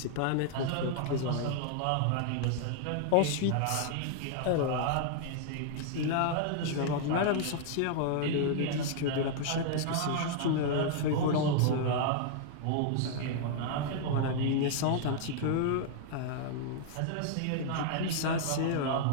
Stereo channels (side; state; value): both; different; correlation -0.01